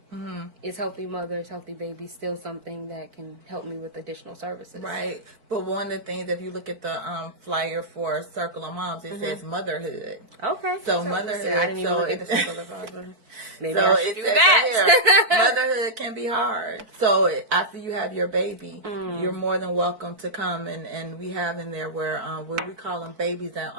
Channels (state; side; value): late; left; 4.5 ms